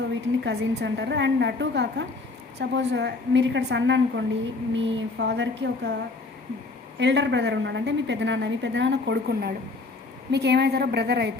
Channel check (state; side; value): quieter; right; 3.6 dB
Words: వీటిని కజిన్స్ అంటారు. అండ్ అటు కాక సపోజ్ మీరు ఇక్కడ సన్ అనుకోండి, మీ ఫాదర్కి ఒక ఎల్డర్ బ్రదర్ ఉన్నాడు, అంటే మీ పెద్దనాన్న కొడుకున్నాడు, మీకు ఏమవుతారో బ్రదర్